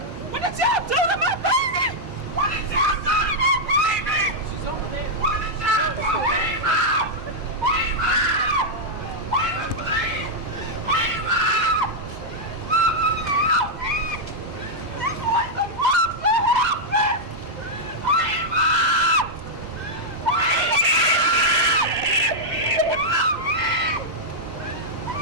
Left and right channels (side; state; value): both; normal; correlation -0.04